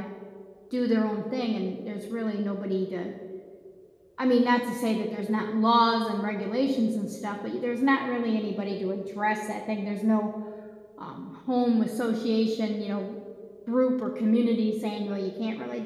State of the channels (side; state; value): both; identical; correlation 1.00